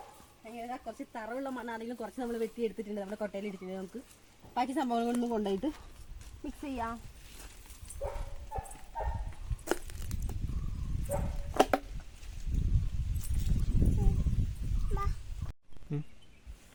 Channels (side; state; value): both; identical; correlation 1.00